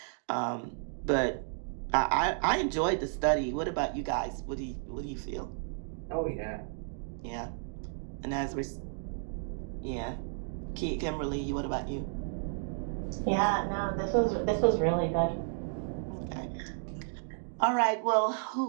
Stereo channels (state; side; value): silent; left; digital silence